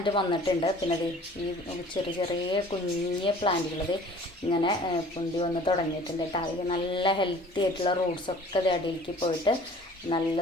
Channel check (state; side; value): normal; both; correlation 0.49